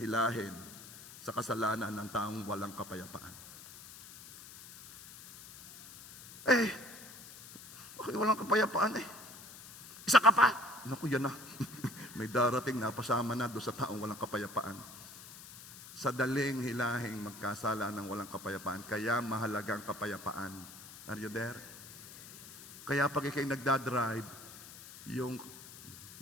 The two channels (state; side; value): noise; left; hiss, 16 dB below the sound